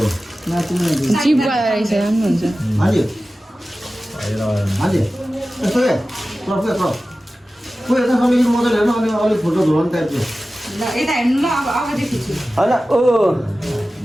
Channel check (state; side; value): normal; both; correlation 0.95